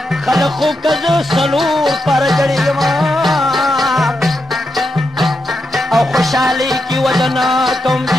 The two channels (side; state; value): both; normal; correlation 0.85